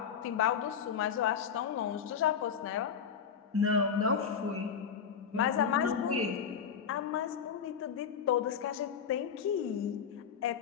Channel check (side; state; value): right; quieter; 7.2 dB